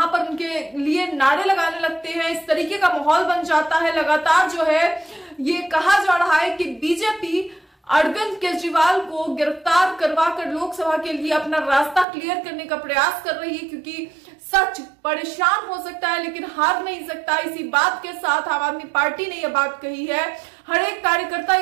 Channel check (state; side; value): drops out; left; at 12.1 s